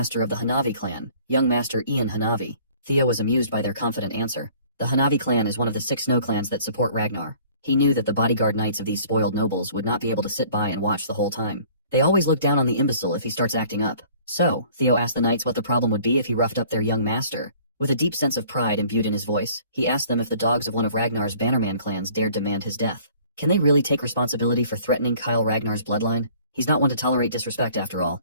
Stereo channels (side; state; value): both; inverted; correlation -0.53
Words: of the Hanavi clan, young master Ian Hanavi. Theo was amused by their confident answer. The Hanavi clan is one of the 6 snow clans that support Ragnar. He knew that the bodyguard knights of these spoiled nobles would not be able to sit by and watch the whole time. They always look down on the imbecile if he starts acting up. So, Theo asked the knights what the problem would be if he roughed up their young master. With a deep sense of pride imbued in his voice, he asked them if the dogs of one of Ragnar's Bannerman clans dared demand his death. Can they really take responsibility for threatening Kyle Ragnar's bloodline? He's not one to tolerate disrespect after all.